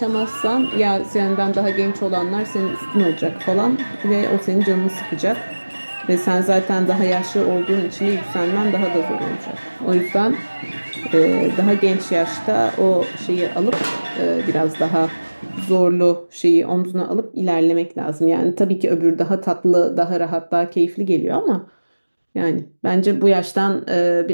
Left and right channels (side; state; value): both; inverted; correlation -1.00